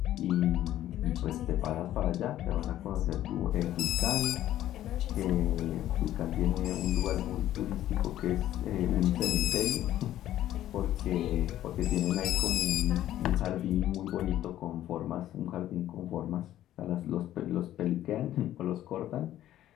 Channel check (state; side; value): quieter; right; 12.9 dB